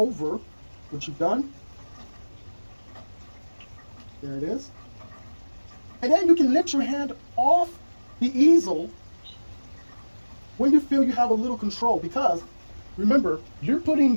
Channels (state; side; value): inverted; both; correlation -1.00